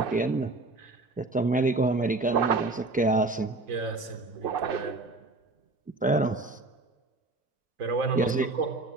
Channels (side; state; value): left; quieter; 3.2 dB